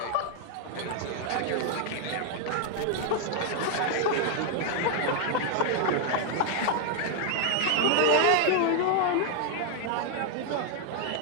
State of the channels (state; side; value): different; both; correlation 0.00